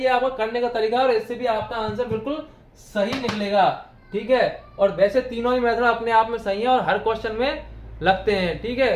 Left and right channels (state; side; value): identical; both; correlation 1.00